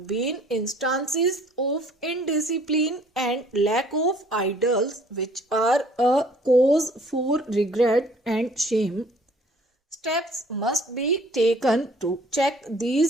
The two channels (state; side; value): normal; both; correlation 0.56